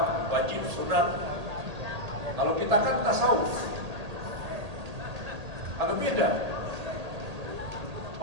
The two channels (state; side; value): late; left; 1.8 ms